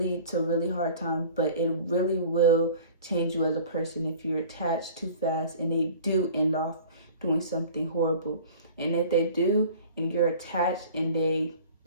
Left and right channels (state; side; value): inverted; both; correlation -0.44